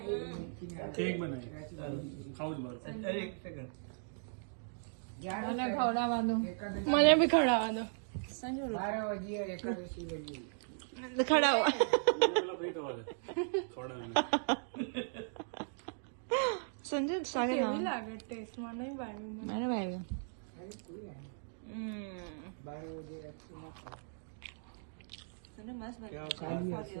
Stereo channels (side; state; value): left; silent; digital silence